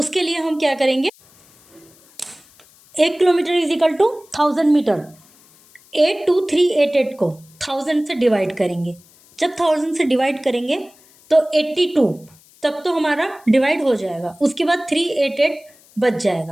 लिए हम क्या करेंगे, 1 kilometre is equal to 1000 metre, 82388 को 1000 से डिवाइड करेंगे। जब 1000 से डिवाइड करेंगे तो 82 तक तो हमारा डिवाइड हो जाएगा, उसके बाद 388 बच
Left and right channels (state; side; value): noise; left; hiss, 28 dB below the sound